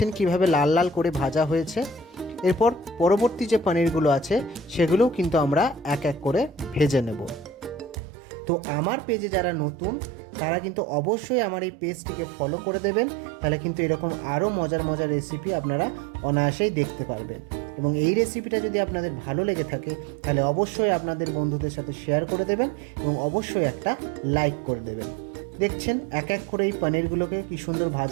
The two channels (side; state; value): left; drops out; at 8.0 s